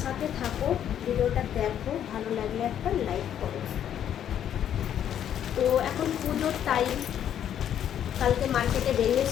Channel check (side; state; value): right; quieter; 9.9 dB